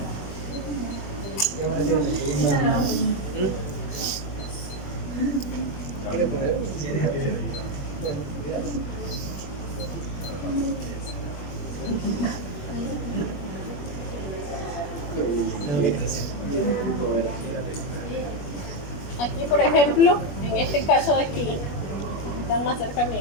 ¿Quiere poner? Aquí, por ejemplo, en este caso de aquí, están más cerca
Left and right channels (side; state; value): right; late; 21 ms